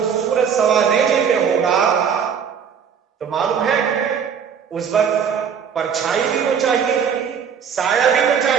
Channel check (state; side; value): quieter; left; 7.2 dB